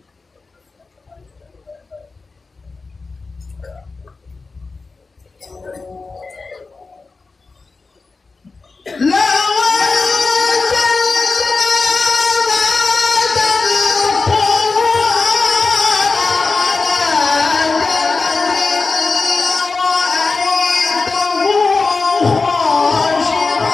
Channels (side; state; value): right; quieter; 4.0 dB